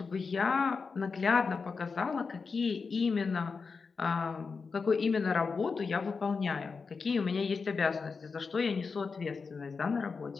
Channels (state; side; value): quieter; right; 4.9 dB